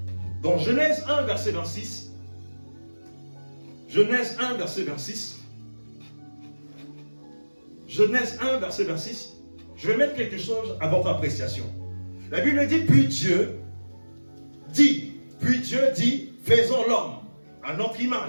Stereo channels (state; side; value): inverted; both; correlation -1.00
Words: dans Genèse 1, verset 26. Genèse 1, verset 26. Genèse 1, verset 26. Je vais mettre quelque chose à votre appréciation. La Bible dit, puis Dieu dit, faisons l'homme à notre